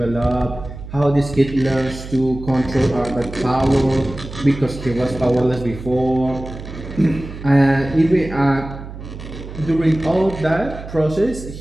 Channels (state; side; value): noise; right; hum, 12 dB below the sound